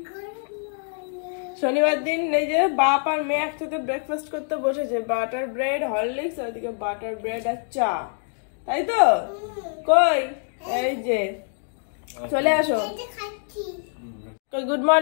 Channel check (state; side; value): silent; right; 62 dB below the other